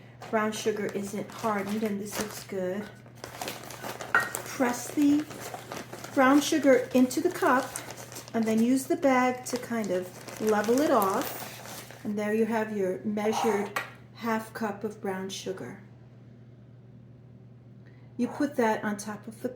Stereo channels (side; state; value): both; identical; correlation 1.00